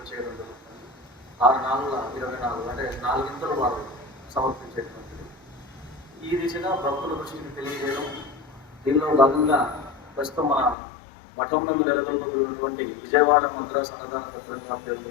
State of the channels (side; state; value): right; drops out; at 10.8 s